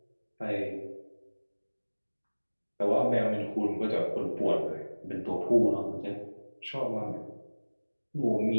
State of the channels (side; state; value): both; inverted; correlation -1.00